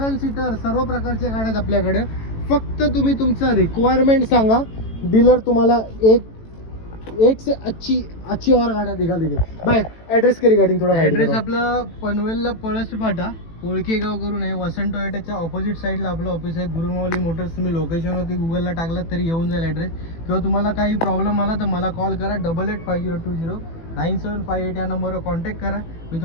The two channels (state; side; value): late; right; 18 ms